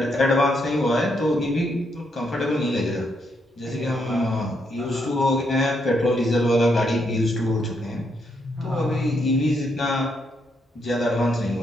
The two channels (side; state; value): both; normal; correlation 0.77